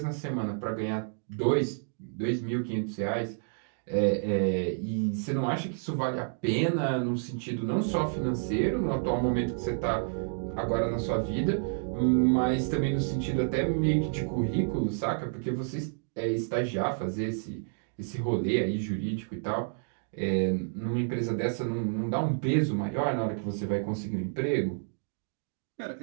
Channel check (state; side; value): silent; left; digital silence